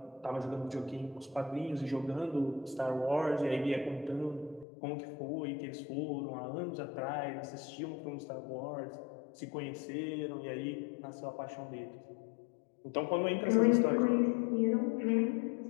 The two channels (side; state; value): right; drops out; at 4.7 s